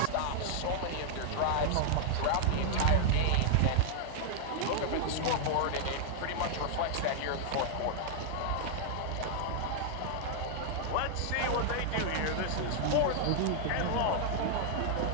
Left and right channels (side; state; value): both; different; correlation -0.01